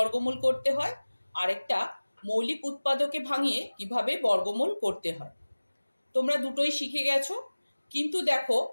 করতে হয়, আরেকটা মৌলিক উৎপাদকে ভাঙিয়ে কিভাবে বর্গমূল করতে হয়। তোমরা দুটোই শিখে গেছো, কিন্তু দেখো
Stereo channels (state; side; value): inverted; both; correlation -1.00